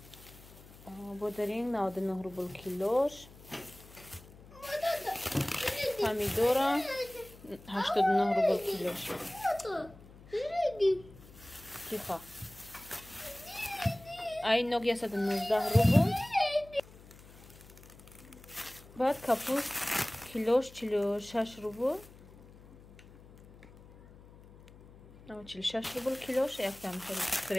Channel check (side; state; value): left; noise; hum, 21 dB below the sound